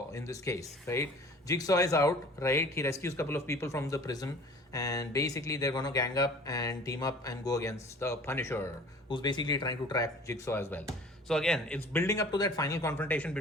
in this case, right? Jigsaw is out, right? He rescues a couple of people from the prison, and basically they're going to gang up and team up and go against the Punisher, who's basically trying to track Jigsaw as well. So again, it's building up to that final confrontation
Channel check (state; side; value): normal; both; correlation 0.47